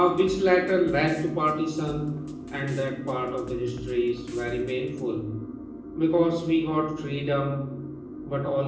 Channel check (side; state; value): both; identical; correlation 1.00